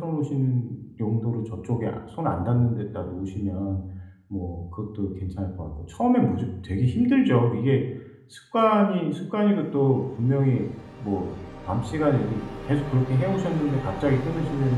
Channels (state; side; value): identical; both; correlation 1.00